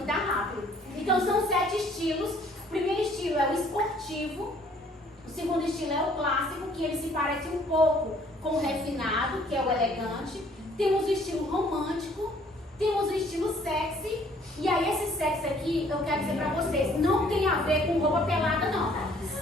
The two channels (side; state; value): both; normal; correlation 0.60